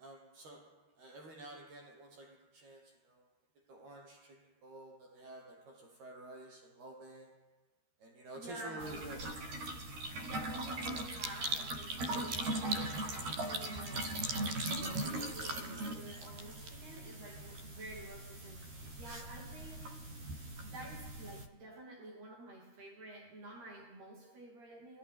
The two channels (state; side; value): late; left; 13 ms